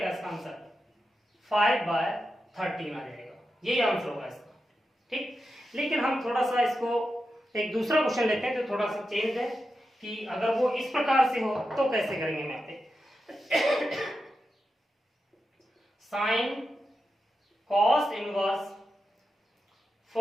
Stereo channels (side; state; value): both; normal; correlation 0.89